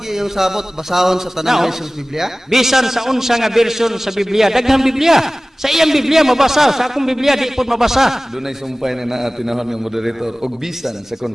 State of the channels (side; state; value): both; normal; correlation 0.98